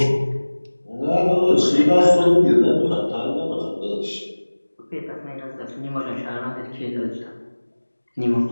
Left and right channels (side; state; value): both; inverted; correlation -1.00